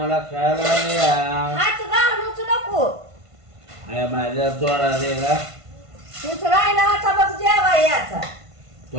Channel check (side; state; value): left; late; 1.5 ms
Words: खायला द्या. हात घालूच नको. माझ्या थोडा दे का. तूच राहिला होता बघ जेवा याचा.